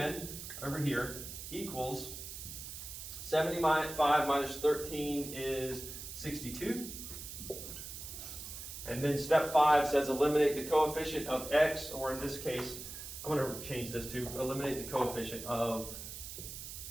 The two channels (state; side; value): noise; right; hiss, 9 dB below the sound